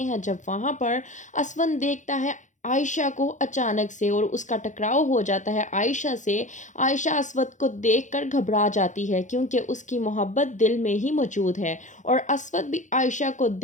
हैं जब वहाँ पर असवन देखता है आयशा को अचानक से और उसका टकराव हो जाता है आयशा से। आयशा असवद को देखकर घबरा जाती है, क्योंकि उसकी मोहब्बत दिल में ही मौजूद है, और असवद भी आयशा को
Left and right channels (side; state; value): right; late; 0.36 ms